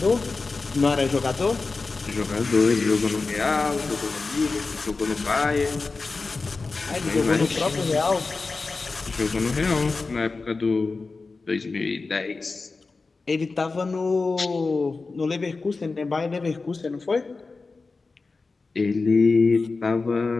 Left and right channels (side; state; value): right; quieter; 3.9 dB